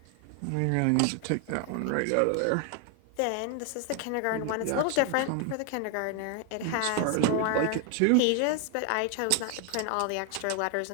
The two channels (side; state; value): both; different; correlation 0.00